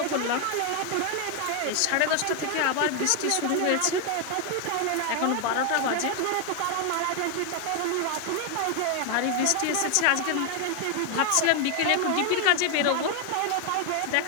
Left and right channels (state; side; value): different; both; correlation 0.01